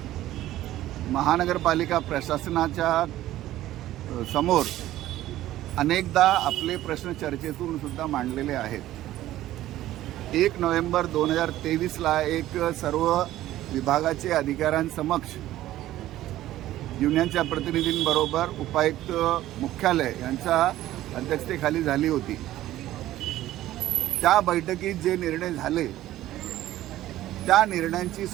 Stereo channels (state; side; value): quieter; left; 14.4 dB